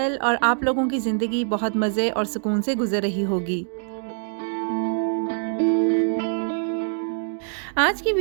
और आप लोगों की ज़िंदगी बहुत मज़े और सुकून से गुजर रही होगी. आज की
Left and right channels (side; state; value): left; silent; digital silence